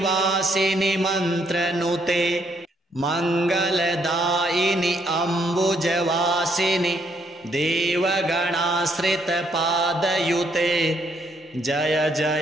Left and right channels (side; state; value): both; normal; correlation 0.72